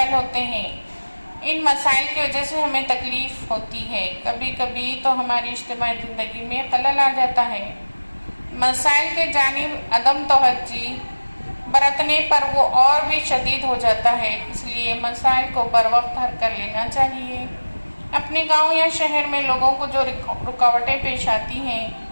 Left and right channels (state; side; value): inverted; both; correlation -1.00